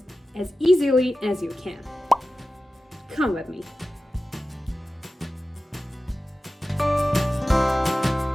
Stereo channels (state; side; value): normal; both; correlation 0.94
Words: as easily as you can. Come with me.